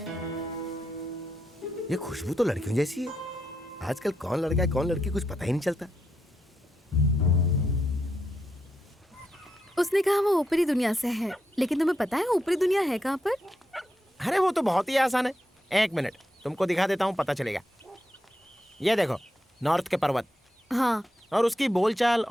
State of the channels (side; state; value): both; normal; correlation 0.83